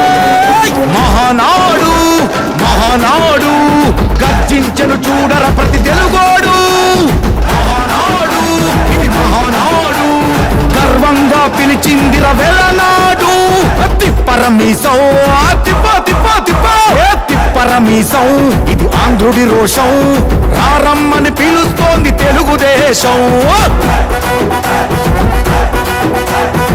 మహానాడు మహానాడు గర్జించను చూడర ప్రతి తెలుగోడు మహానాడు ఇది మహానాడు గర్వంగా పిలిచిందిర వెలనాడు తిప్పరమీసం తిప్పరమీసం ఇది ఆంధ్రుడి రోషం రారమ్మని పిలుస్తోంది తెలుగుదేశం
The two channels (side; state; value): both; identical; correlation 1.00